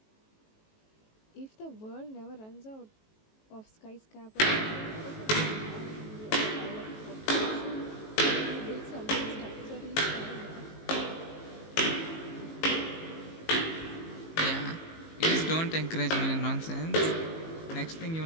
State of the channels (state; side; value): late; right; 18 ms